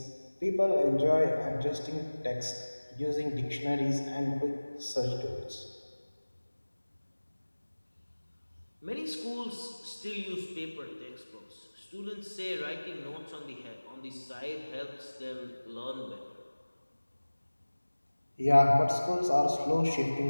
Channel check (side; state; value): both; inverted; correlation -1.00